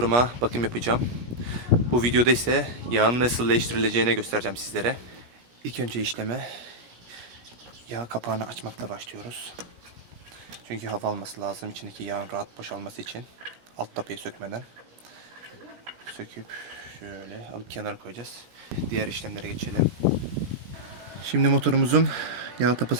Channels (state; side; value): late; left; 17 ms